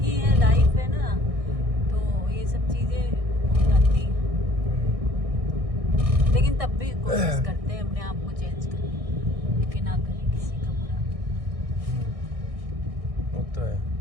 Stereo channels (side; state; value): left; late; 1.6 ms